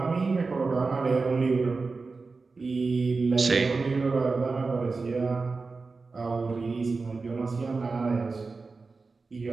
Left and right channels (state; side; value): quieter; left; 4.1 dB